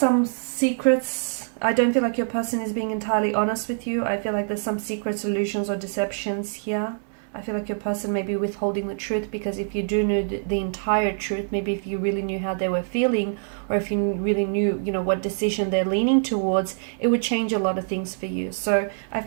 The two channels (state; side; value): silent; left; digital silence